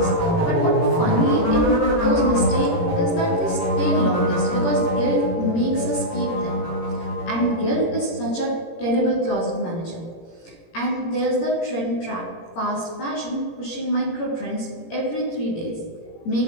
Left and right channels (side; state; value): right; late; 18 ms